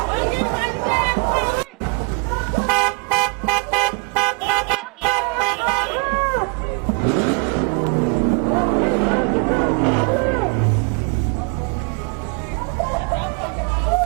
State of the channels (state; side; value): quieter; left; 36.1 dB